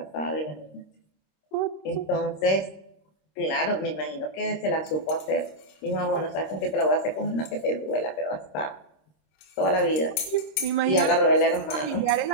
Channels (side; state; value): right; late; 26 ms